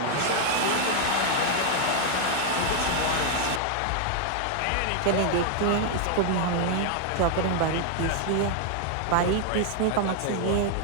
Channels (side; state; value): both; different; correlation 0.00